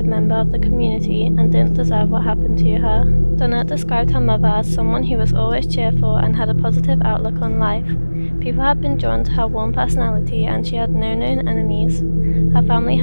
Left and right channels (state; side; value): inverted; both; correlation -1.00